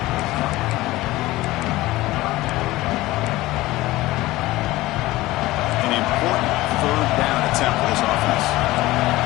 An important third down attempt for this offense.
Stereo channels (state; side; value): quieter; right; 18.2 dB